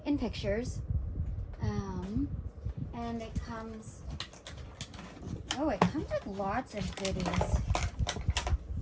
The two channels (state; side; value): identical; both; correlation 1.00